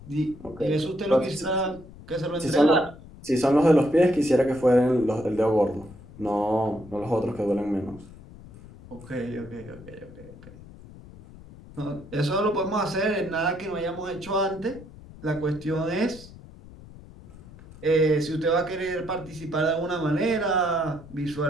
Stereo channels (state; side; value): noise; left; rumble, 18 dB below the sound